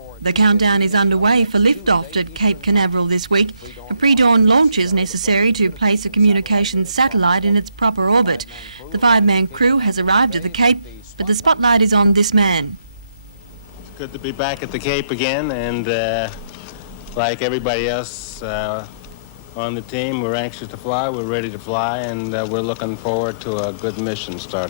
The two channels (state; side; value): inverted; both; correlation -0.72